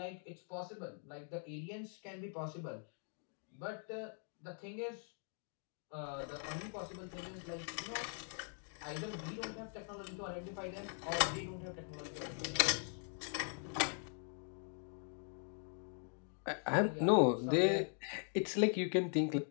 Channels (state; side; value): silent; right; 50 dB below the other